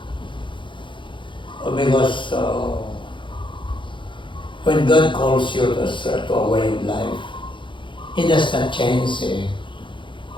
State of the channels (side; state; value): right; late; 0.24 ms